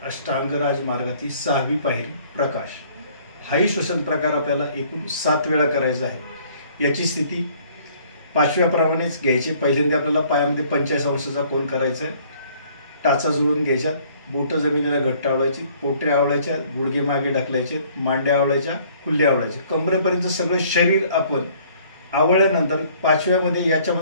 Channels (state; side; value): inverted; both; correlation -0.58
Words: अष्टांग राजमार्गातील 6वी पायरी प्रकाश। हाही श्वसन प्रकार आपल्याला एकूण 7 वेळा करायचा आहे। याची स्थिती 5व्या प्रमाणेच घ्यायची। पहिल्यांदा आपल्याला पायामध्ये 45 अंशाचा कोन करायचा आहे। टाचा जुळून घ्यायच्या, बोट जमिनीला घट्ट आवळायची, पोटऱ्या आवळायच्या, गुडघे मागे ढकलायचे, मांड्या आवळायच्या, कुल्ले आवळायचे, कमरेपर्यंत सगळं शरीर आपण आवळल्यानंतर 5व्यामध्ये